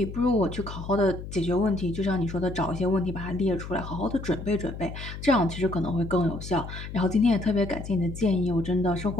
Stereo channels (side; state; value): left; noise; hum, 10 dB below the sound